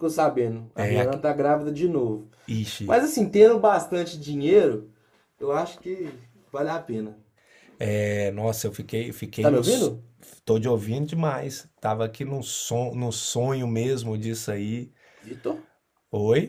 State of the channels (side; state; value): both; identical; correlation 1.00